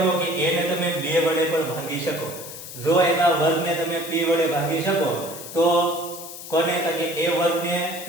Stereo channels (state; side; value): noise; left; hiss, 12 dB below the sound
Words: કે a ને તમે 2 વડે પણ ભાગી શકો. જો એના વર્ગને તમે p વડે ભાગી શકો તો કોને? તો કે a વર્ગને p